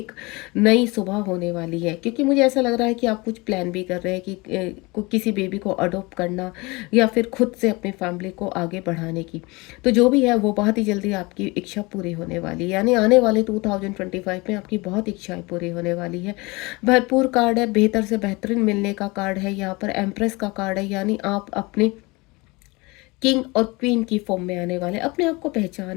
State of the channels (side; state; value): right; quieter; 24.7 dB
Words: नई सुबह होने वाली है। क्योंकि मुझे ऐसा लग रहा है कि आप कुछ प्लान भी कर रहे हैं कि किसी बेबी को अडॉप्ट करना या फिर खुद से अपनी फैमिली को आगे बढ़ाने की। तो जो भी है वो बहुत ही जल्दी आपकी इच्छा पूरी होने वाली है, यानी आने वाले 2025 में आपकी बहुत इच्छाएं पूरी होने वाली है। भरपूर कार्ड है, बेहतर से बेहतरीन मिलने का कार्ड है। यहाँ पर एम्प्रेस का कार्ड है, यानी आप अपने किंग और क्वीन की फॉर्म में आने वाले, अपने आप को